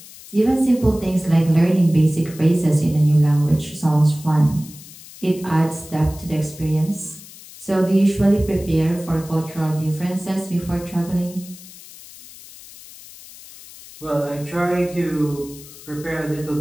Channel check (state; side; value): noise; left; hiss, 18 dB below the sound